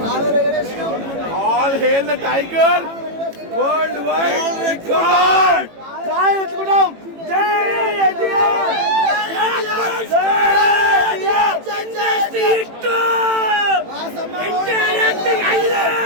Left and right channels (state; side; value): late; left; 18 ms